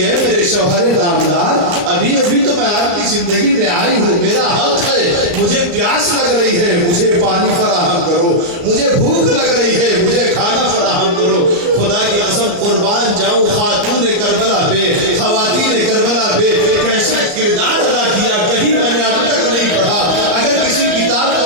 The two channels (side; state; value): left; late; 34 ms